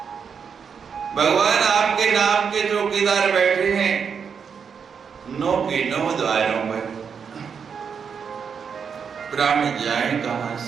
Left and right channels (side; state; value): left; quieter; 6.6 dB